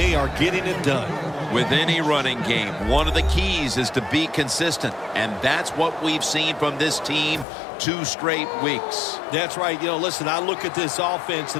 are getting it done. With any running game, one of the keys is to be consistent, and that's what we've seen from this team 2 straight weeks. That's right. You know, listen, I look at this offense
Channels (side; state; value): right; drops out; at 7.5 s